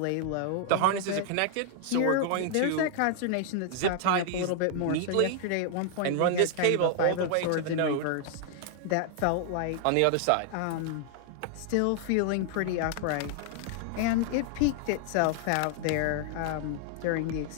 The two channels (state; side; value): different; both; correlation 0.00